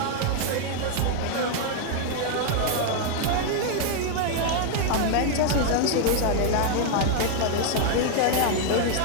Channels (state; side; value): different; both; correlation 0.00